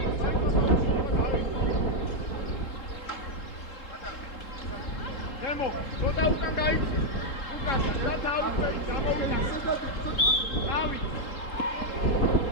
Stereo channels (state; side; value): late; right; 3.7 ms